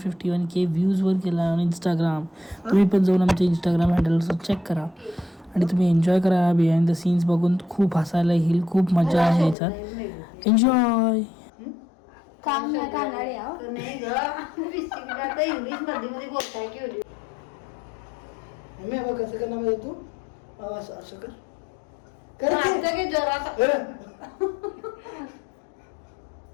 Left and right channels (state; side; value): drops out; right; at 9.6 s